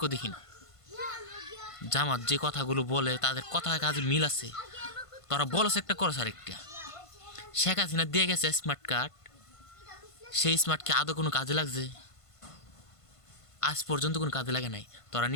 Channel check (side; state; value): right; late; 1.5 ms